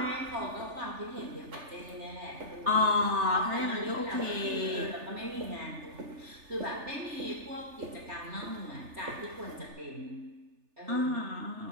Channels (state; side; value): late; left; 3.4 ms